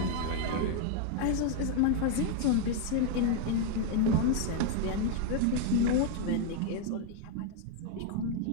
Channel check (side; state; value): both; different; correlation 0.00